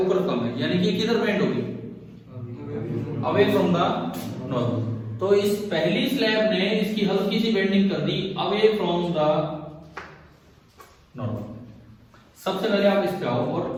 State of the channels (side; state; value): both; identical; correlation 1.00